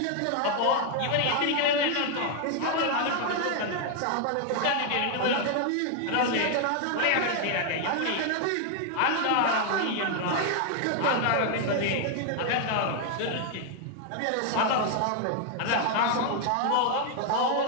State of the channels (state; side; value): different; both; correlation 0.00